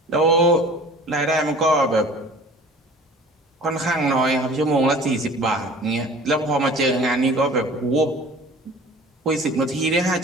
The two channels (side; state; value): both; normal; correlation 0.45